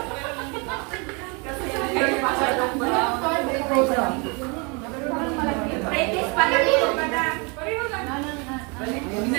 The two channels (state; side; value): quieter; left; 31.5 dB